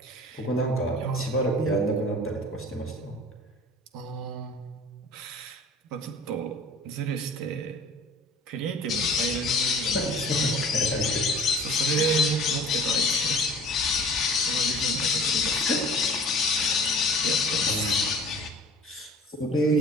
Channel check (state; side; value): normal; both; correlation 0.46